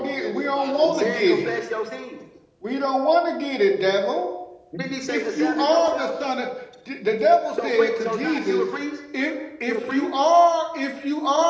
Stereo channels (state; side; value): identical; both; correlation 1.00